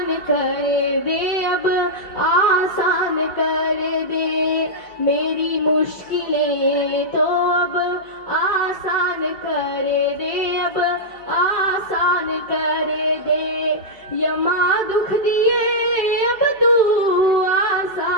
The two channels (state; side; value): late; right; 4.9 ms